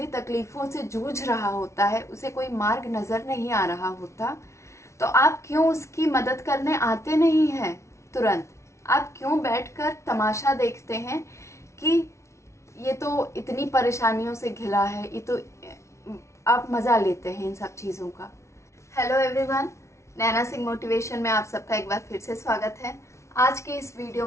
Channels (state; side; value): late; right; 0.13 ms